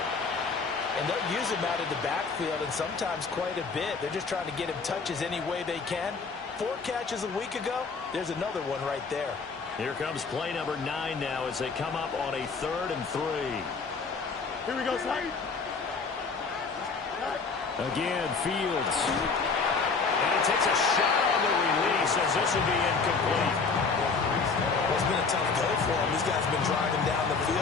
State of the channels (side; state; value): right; quieter; 4.7 dB